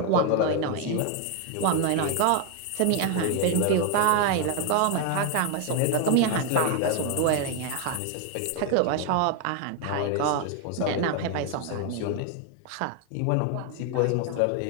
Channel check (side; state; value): both; different; correlation 0.01